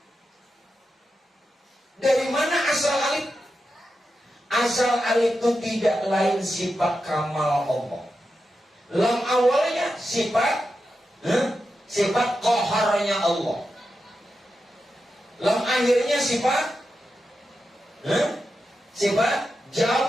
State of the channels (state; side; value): normal; both; correlation 0.89